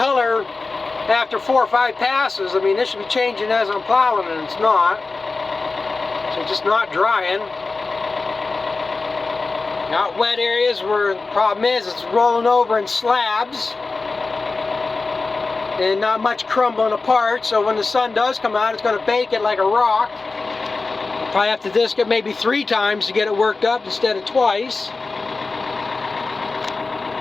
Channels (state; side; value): quieter; right; 3.8 dB